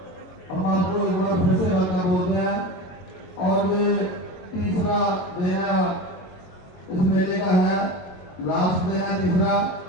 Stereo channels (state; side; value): late; right; 22 ms